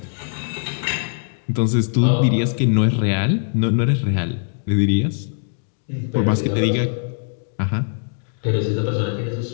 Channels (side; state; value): right; silent; digital silence